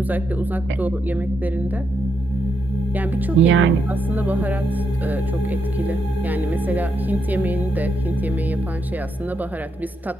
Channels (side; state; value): both; normal; correlation 0.81